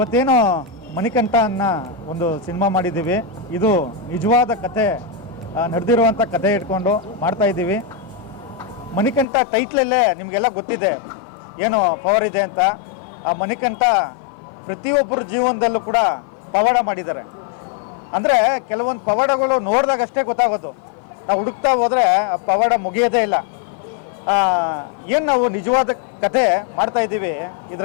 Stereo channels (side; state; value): right; drops out; at 9.2 s